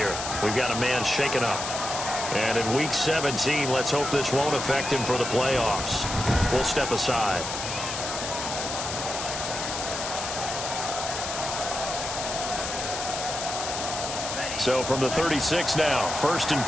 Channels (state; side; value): noise; left; hiss, 5 dB below the sound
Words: We've got a man shaken up. And in Week 17, let's hope this won't affect him for the playoffs. We'll step aside. So from the 36 now, 1st and